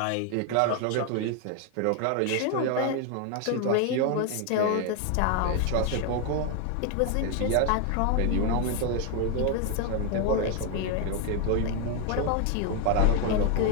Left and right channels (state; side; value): different; both; correlation 0.01